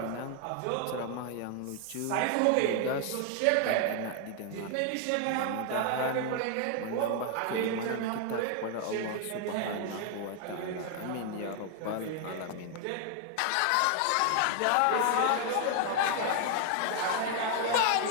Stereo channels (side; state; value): both; different; correlation 0.00